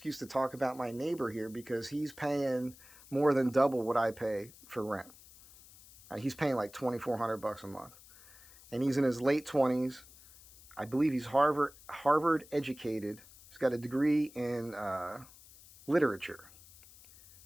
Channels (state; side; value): noise; left; hiss, 22 dB below the sound